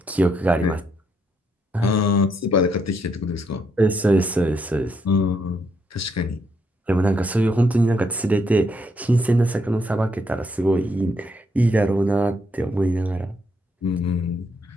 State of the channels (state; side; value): normal; both; correlation 0.75